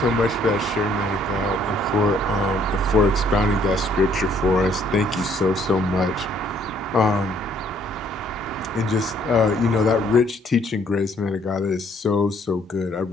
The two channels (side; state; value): both; normal; correlation 0.64